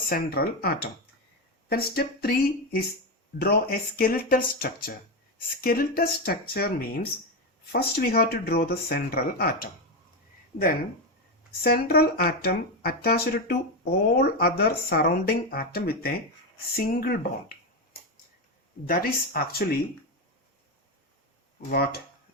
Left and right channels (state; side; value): normal; both; correlation 0.11